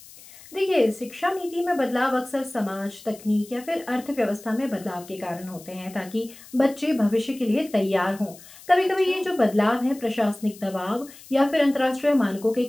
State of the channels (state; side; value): noise; left; hiss, 20 dB below the sound